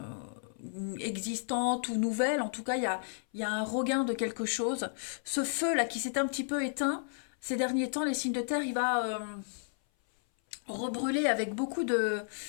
existante ou nouvelle, en tout cas, il y a un regain de quelque chose. Ce feu-là qui s'est un petit peu éteint, ces derniers temps, les signes de terre, il va rebrûler avec beaucoup de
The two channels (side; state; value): right; silent; 56 dB below the other